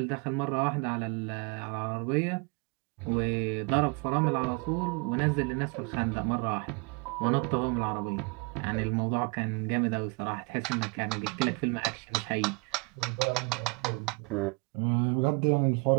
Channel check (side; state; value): left; quieter; 30.7 dB